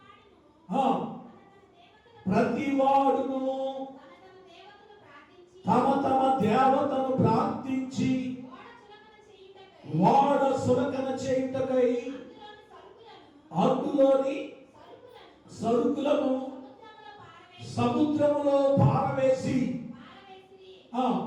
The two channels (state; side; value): identical; both; correlation 1.00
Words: ప్రతి వాడును తమ తమ దేవతను ప్రార్థించి వాడ సురకన చేయుటకై అందులోని సరుకులను సముద్రములో పారవేసి